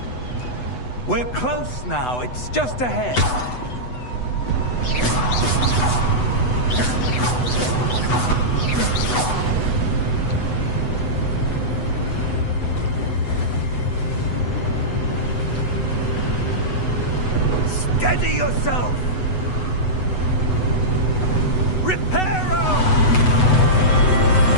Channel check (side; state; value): right; late; 8.0 ms